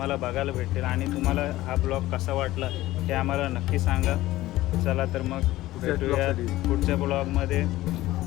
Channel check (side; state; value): right; quieter; 16.5 dB